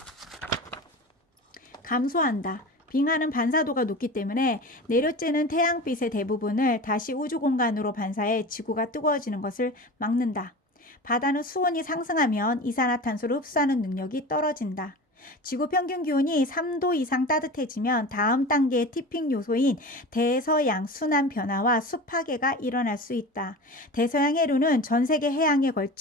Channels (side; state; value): both; normal; correlation 0.32